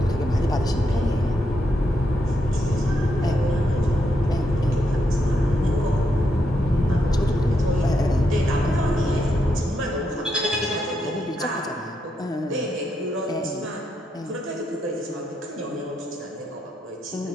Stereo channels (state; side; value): normal; both; correlation 0.81